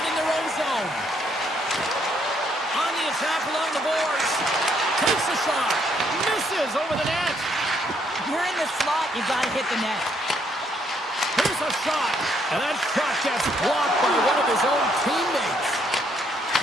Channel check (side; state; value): both; normal; correlation 0.71